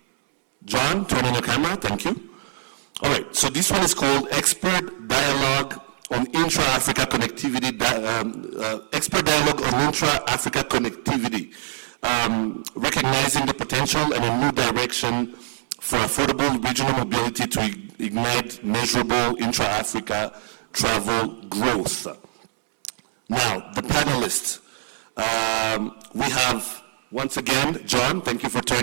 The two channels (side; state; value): left; silent; 63 dB below the other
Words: John, turn on your camera, thank you. All right, so this one is called Expert Dialogue on Intra-Africa Connectivity, Expert Dialogue on Intra-Africa Connectivity, recognizing the potential and a new direction for affordable regional mobility to ignite measurable intra-Africa travel growth. Now, the panelists. We have, once again, John, thank you for